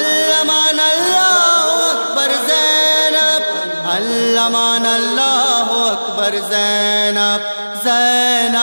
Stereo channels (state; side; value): inverted; both; correlation -1.00